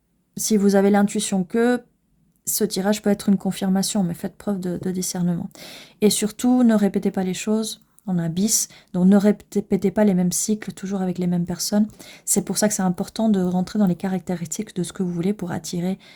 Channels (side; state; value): both; identical; correlation 1.00